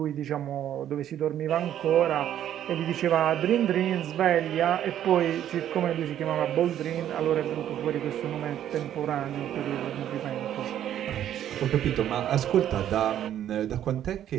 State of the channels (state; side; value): quieter; left; 11.0 dB